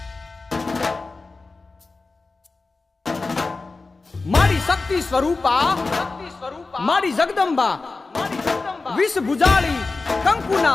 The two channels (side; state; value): right; quieter; 3.7 dB